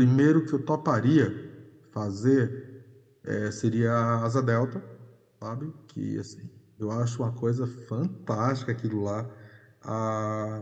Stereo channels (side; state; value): both; identical; correlation 1.00